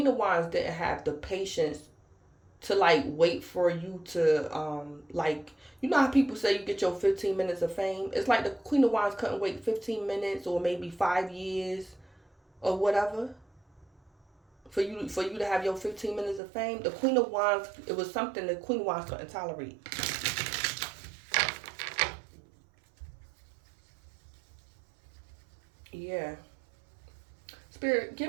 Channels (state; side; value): drops out; left; at 16.4 s